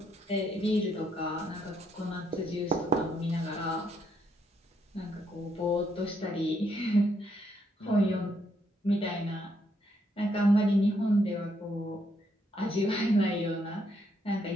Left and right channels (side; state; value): both; normal; correlation 0.75